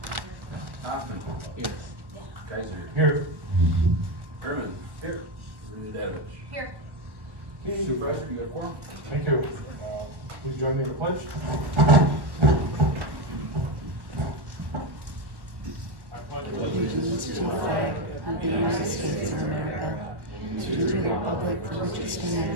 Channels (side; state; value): left; late; 1.1 ms